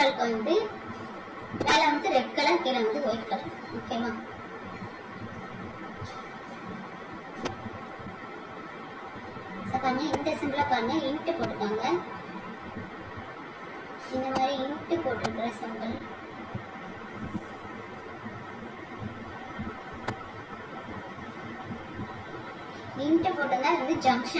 வந்து மேல வந்து ரெட் கலர், கீழே வந்து ஒயிட் கலர். ஓகேவா, பாருங்க இந்த சிம்பிள பாருங்க, இன்ட் போட்டுருக்காங்க. இந்த மாதிரி இன்ட் போட்டுருக்கிற சிம்பிள் இன்ட் போட்டதா வந்து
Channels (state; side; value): identical; both; correlation 1.00